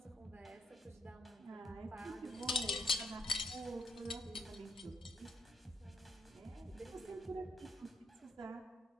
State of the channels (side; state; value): both; normal; correlation 0.73